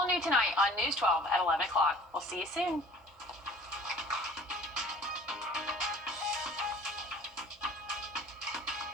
new tonight on News 12 at 11 o'clock. We'll see you soon.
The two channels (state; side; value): normal; both; correlation 0.48